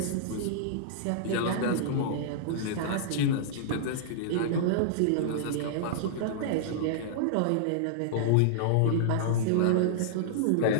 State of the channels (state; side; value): different; both; correlation -0.02